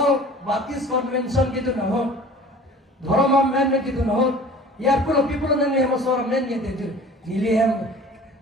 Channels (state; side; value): normal; both; correlation 0.45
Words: Baptist Convention gitu na ho dhoroma men gitu na ho yar ko people na ne mo sor men ge te nili hem